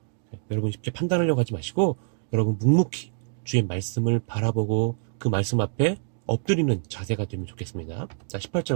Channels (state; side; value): silent; left; digital silence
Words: 여러분 쉽게 판단하려고 하지 마시고 여러분 묵묵히 주의 말씀을 바라보고 그 말씀 앞에 엎드리는 자세가 되면 좋겠습니다. 자, 18절